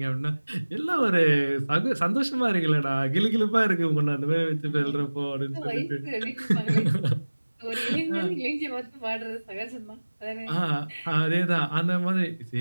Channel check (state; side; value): inverted; both; correlation -1.00